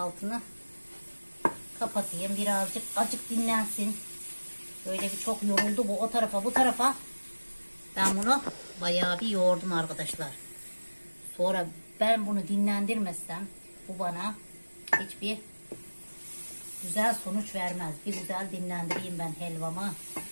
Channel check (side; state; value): both; inverted; correlation -1.00